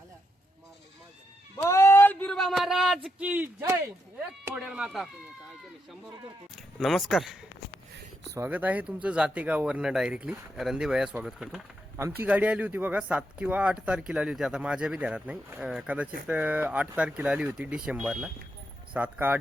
बोल बिरुबा महाराज की जय. एक फोडेल माता. नमस्कार, स्वागत आहे तुमचं जातेगाववरनं डायरेक्टली. रणदीभैया स्वागत करतो. आमची गाडी आली होती बघा 7 किंवा 8 तारखेला आली होती. आता माझ्या बी ध्यानात नाही. कदाचित 8 तारखेला आली होती डिसेंबरला. 7 का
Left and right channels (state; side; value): normal; both; correlation 0.82